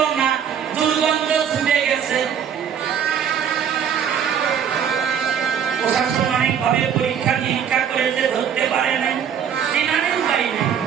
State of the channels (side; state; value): left; quieter; 8.2 dB